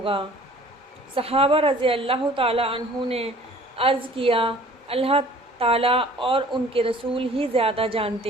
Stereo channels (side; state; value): both; normal; correlation 0.50